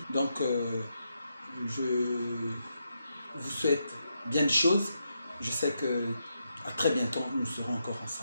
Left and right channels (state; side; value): inverted; both; correlation -0.83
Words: Donc, je vous souhaite bien de choses. Je sais que à très bientôt, nous serons encore